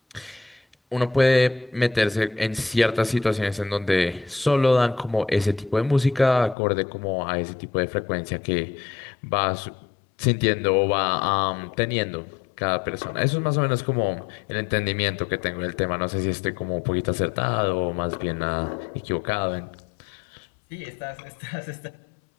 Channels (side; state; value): right; drops out; at 6.6 s